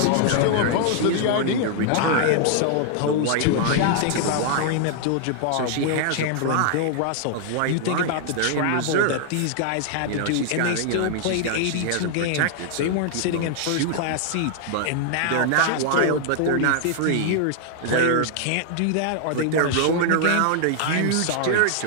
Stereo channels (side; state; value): both; different; correlation 0.00